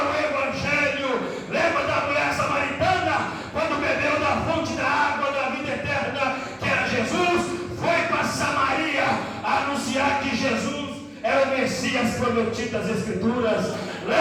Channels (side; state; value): both; identical; correlation 1.00